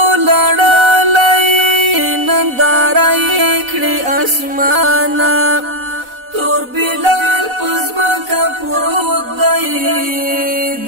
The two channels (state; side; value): late; left; 4.0 ms